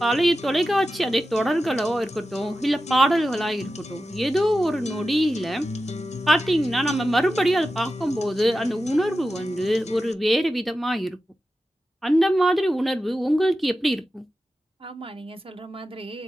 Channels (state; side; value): normal; both; correlation 0.92